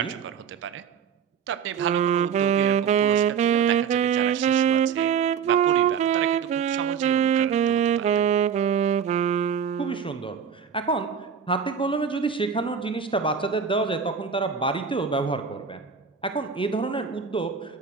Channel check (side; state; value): left; quieter; 7.1 dB